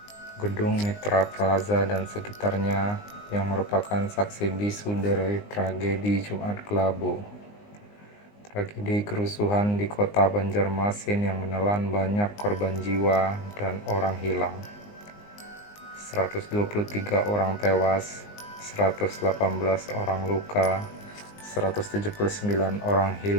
Gedung Mitra Plaza dan sekitarnya yang merupakan saksi bisu dari tragedi Jumat Kelabu. Tragedi kerusuhan di kota Banjarmasin yang menelan banyak korban jiwa dan orang hilang. 123 orang tewas, 118 orang luka, 179 orang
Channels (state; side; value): late; right; 19 ms